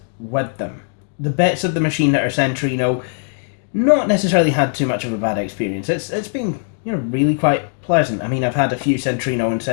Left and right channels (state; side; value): silent; right; digital silence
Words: with them. The bits of the machine that are Centrino, not necessarily had too much of a bad experience. It's been, really quite pleasant. I mean, I've had a few Centrino and